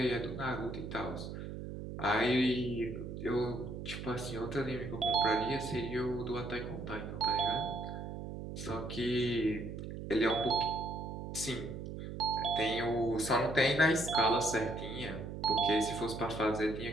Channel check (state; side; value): noise; right; hum, 8 dB below the sound